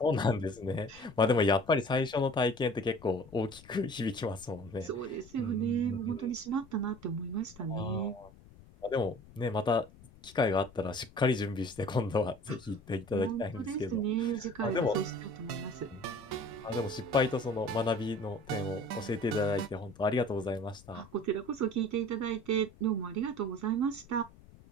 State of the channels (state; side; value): noise; left; rumble, 22 dB below the sound